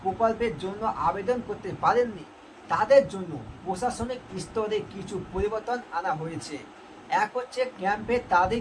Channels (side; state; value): both; identical; correlation 1.00